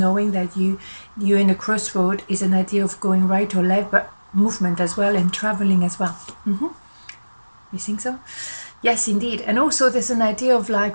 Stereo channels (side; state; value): both; inverted; correlation -1.00